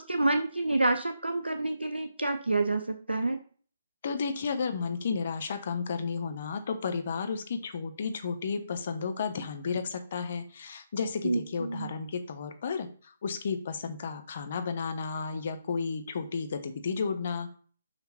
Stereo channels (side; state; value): both; inverted; correlation -0.80